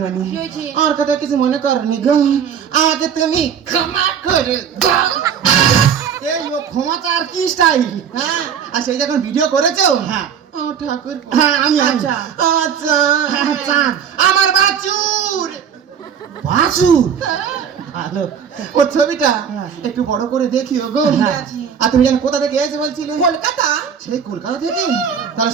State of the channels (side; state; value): left; quieter; 7.7 dB